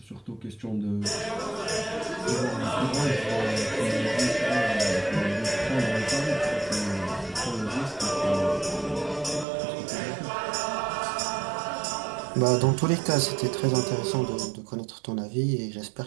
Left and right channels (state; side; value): drops out; left; at 9.5 s